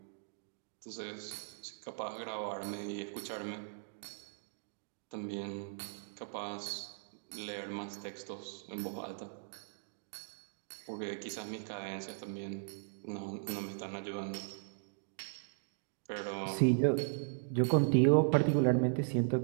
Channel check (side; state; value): left; silent; digital silence